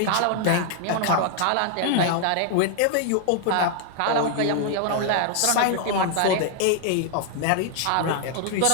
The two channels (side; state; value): both; different; correlation 0.00